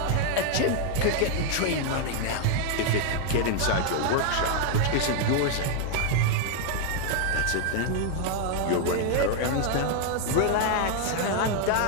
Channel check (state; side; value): different; both; correlation 0.00